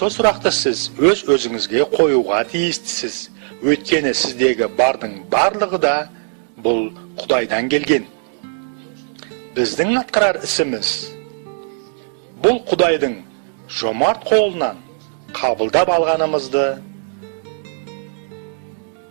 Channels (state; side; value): silent; left; digital silence